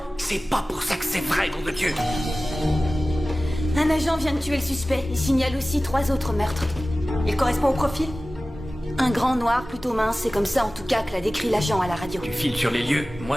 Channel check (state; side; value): normal; both; correlation 0.96